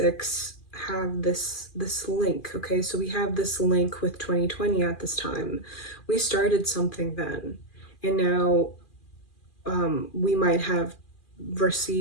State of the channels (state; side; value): late; right; 2.4 ms